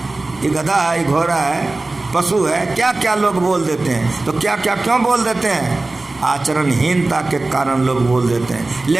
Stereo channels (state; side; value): quieter; left; 3.2 dB